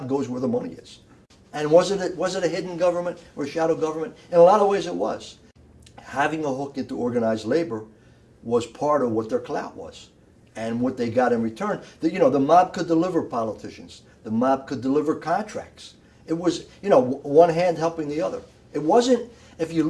goes where the money is. And was it a hidden government or a shadow government? In a lot of ways it was. Having a hook into organized labor was part of what their clout was and what they got in return. The mob could deliver politicians. The mob could deliver contracts. It was, one hand helping the other. It wasn't, if you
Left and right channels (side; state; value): both; identical; correlation 1.00